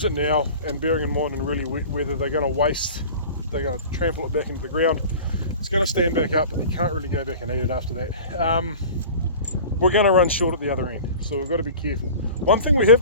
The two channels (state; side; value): inverted; both; correlation -0.39